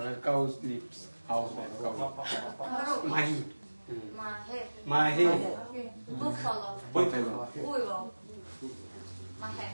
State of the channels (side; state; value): both; inverted; correlation -1.00